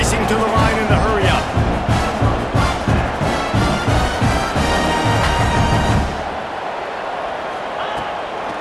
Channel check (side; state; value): both; identical; correlation 1.00